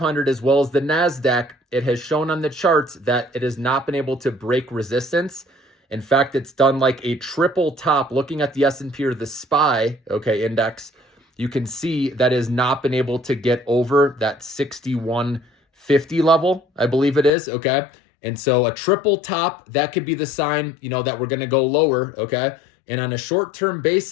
as well as the NASDAQ, it has shown on the charts that it has not been able to break resistance. In fact, it's done like a triple top. Looking at the S&P or the SPY, okay, index, you can see that has not been able to get over that 6150 level, I believe it is, okay? And so a triple top, that could be the sign, that we're going to go lower, okay? And on a short-term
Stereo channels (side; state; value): right; drops out; at 17.3 s